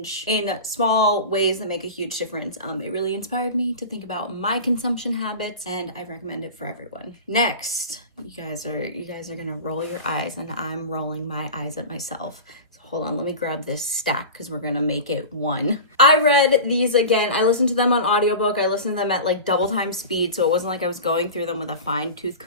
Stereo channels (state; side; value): inverted; both; correlation -0.31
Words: in small ways that make a huge difference. It really inspired me to think about my consumption habits, and I recommend it for everyone. Next, you guys are gonna roll your eyes, and I'm rolling my eyes at myself. Hold on, let me grab this stack because we're gonna make it one. I read these again. I listened to them on audiobook. I listened to them at double time speed, so it wasn't like I was going through them with a fine tooth